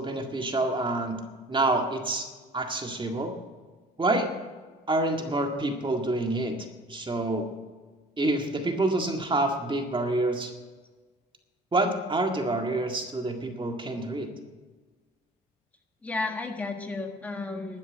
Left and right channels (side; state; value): both; normal; correlation 0.47